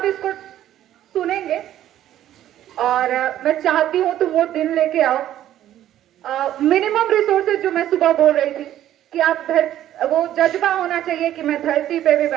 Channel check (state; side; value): quieter; left; 12.2 dB